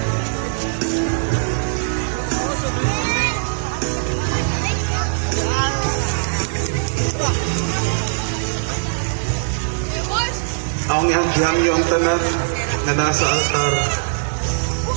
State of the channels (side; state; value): left; silent; digital silence